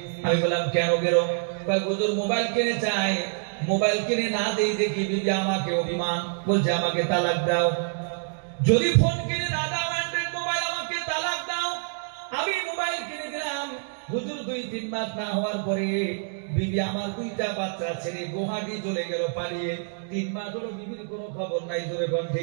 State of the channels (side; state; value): left; silent; digital silence